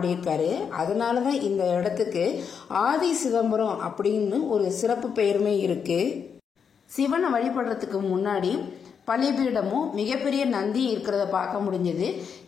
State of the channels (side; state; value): right; quieter; 6.8 dB